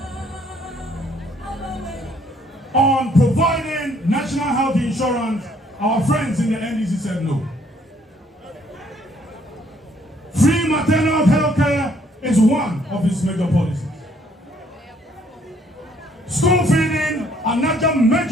on providing national health insurance, our friends in the NDC said no. Free maternal health care is one of his major policies. School feeding, another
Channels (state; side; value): normal; both; correlation 0.65